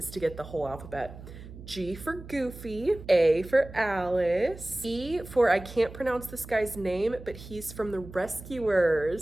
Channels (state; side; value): noise; right; hum, 15 dB below the sound